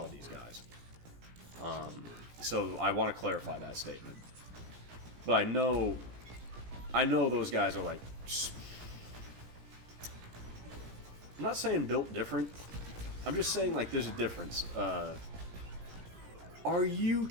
of these guys. So I want to clarify that statement. But I know those guys are like... I'm not saying built different. I'm just saying, like, there's a difference. Are you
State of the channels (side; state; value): left; late; 17 ms